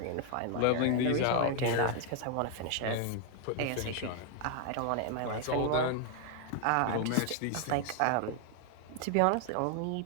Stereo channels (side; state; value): both; different; correlation 0.00